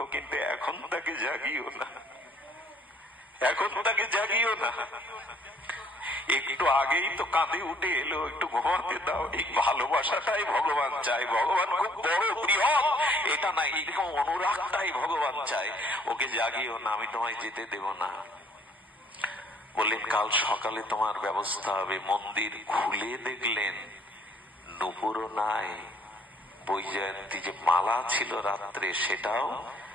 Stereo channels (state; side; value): normal; both; correlation 0.62